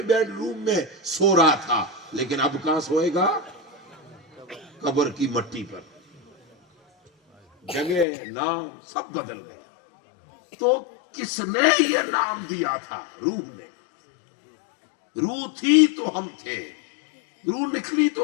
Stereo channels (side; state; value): right; drops out; at 8.1 s